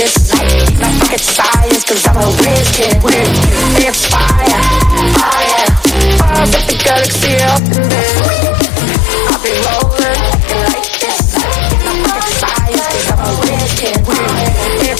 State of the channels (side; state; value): right; drops out; at 7.6 s